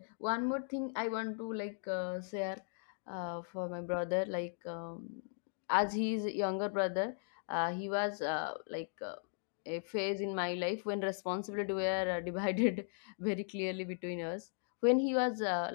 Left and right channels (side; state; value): right; silent; digital silence